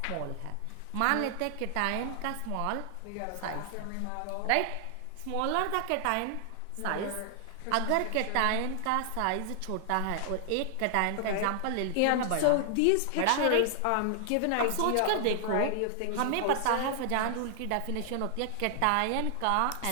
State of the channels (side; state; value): both; different; correlation 0.00